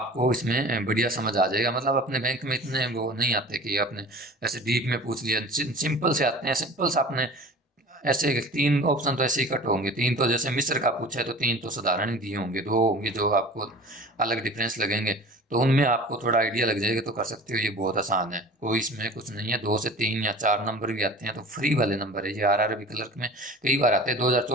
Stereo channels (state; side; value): normal; both; correlation 0.40